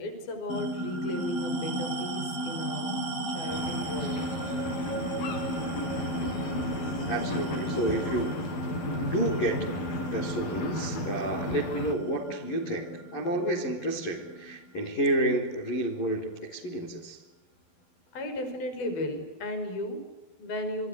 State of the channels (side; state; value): right; late; 12 ms